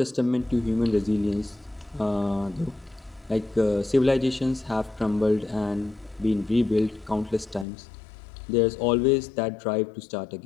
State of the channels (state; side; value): drops out; right; at 7.7 s